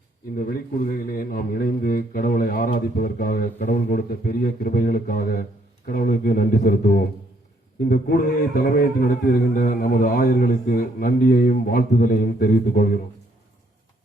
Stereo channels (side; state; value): both; normal; correlation 0.69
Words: இந்த வெளிக்கூடுகையிலே நாம் இணைந்து கடவுளை ஆராதிப்பதற்காக, கடவுள் கொடுத்த பெரிய கிருபைகளுக்காக கடவுளுக்கு நன்றி செலுத்துவோம். இந்த கூடுகையை தலைமையேற்று நடத்தி வருகின்ற நமது ஆயர்களுக்கு நன்றியையும் வாழ்த்துதலையும் தெரிவித்துக் கொள்கிறோம்.